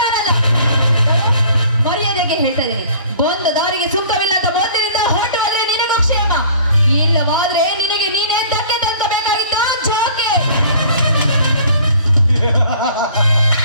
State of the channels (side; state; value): both; inverted; correlation -0.50